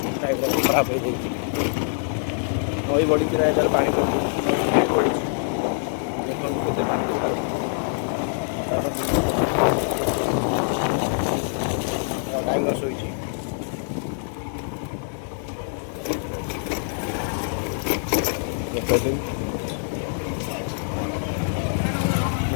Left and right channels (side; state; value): right; silent; digital silence